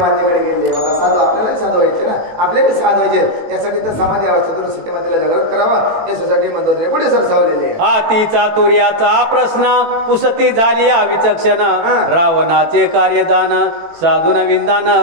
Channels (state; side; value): late; left; 18 ms